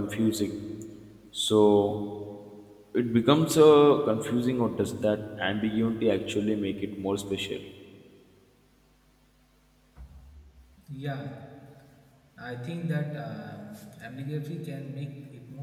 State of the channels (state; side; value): identical; both; correlation 1.00